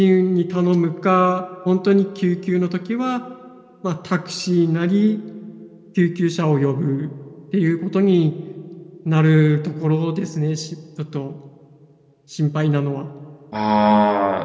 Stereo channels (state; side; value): identical; both; correlation 1.00